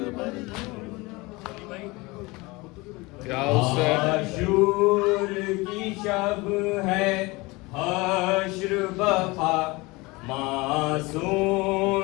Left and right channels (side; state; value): right; quieter; 23.6 dB